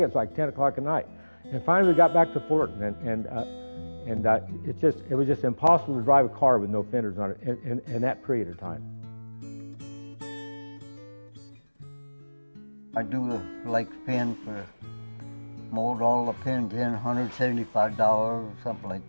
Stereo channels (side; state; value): both; inverted; correlation -1.00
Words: like 10 o'clock at night. And finally we got back to Fullerton, and it was just impossible to drive a car with no fenders on it in that period of time. I do the lake pin for mold all the pins in, $175 or something like